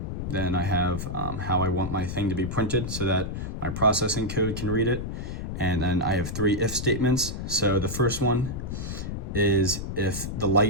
I have how I want my thing to be printed so that my processing code can read it. And then I have 3 if statements. So the first one is if the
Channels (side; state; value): left; noise; rumble, 5 dB below the sound